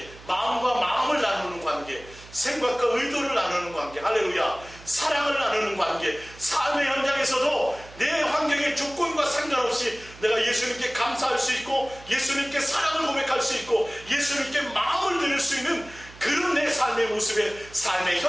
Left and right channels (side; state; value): right; noise; hum, 20 dB below the sound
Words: 마음과 마음을 나누는 관계, 생각과 의도를 나누는 관계, 할렐루야, 사랑을 나누는 관계, 삶의 현장에서도 내 환경의 조건과 상관없이 내가 예수님께 감사할 수 있고 예수님께 사랑을 고백할 수 있고 예수님께 마음을 드릴 수 있는 그런 내 삶의 모습에 삶의